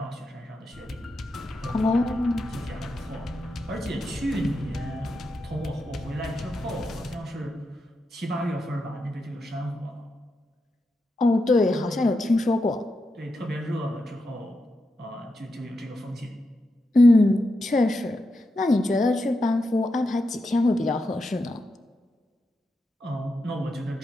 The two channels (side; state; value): both; normal; correlation 0.86